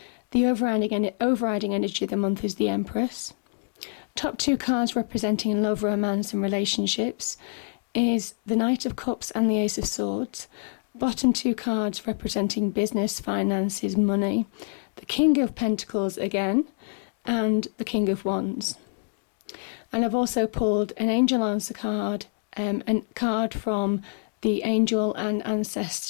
The overriding energy of the month is the Empress. Top two cards representing love, romance and relationships is the Knight of Cups and the Ace of Swords. Bottom two cards representing business, finances, money. The King of Pentacles again, and the King of Wands. And I've also pulled an Angel Answer card, a card from the Angel and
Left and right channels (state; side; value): silent; right; digital silence